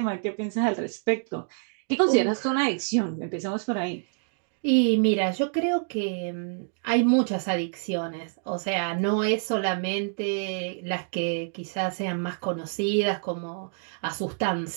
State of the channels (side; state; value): left; silent; digital silence